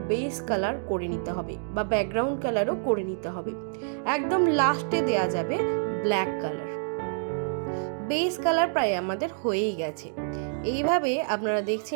বেস কালার করে নিতে হবে বা ব্যাকগ্রাউন্ড কালারও করে নিতে হবে। একদম লাস্টে দেয়া যাবে ব্ল্যাক কালার। বেস কালার প্রায় আমাদের হয়েই গেছে। এইভাবে আপনারা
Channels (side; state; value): left; silent; digital silence